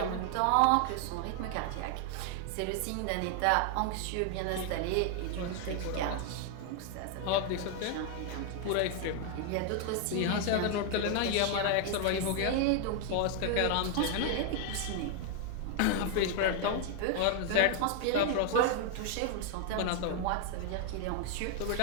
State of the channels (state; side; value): different; both; correlation 0.00